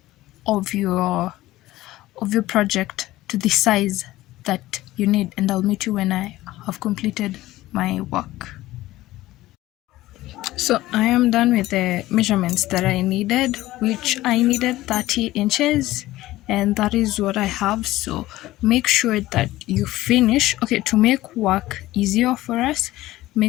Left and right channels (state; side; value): quieter; right; 16.6 dB